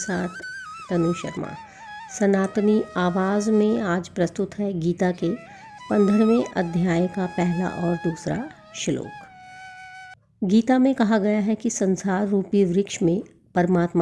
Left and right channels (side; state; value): both; identical; correlation 1.00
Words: तनु शर्मा। सनातनी आवाज़ में आज प्रस्तुत है गीता के 15वें अध्याय का पहला और दूसरा श्लोक। गीता में कहा गया है कि संसार रूपी वृक्ष में